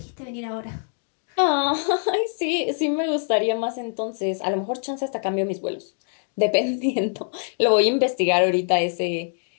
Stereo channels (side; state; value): right; silent; 63 dB below the other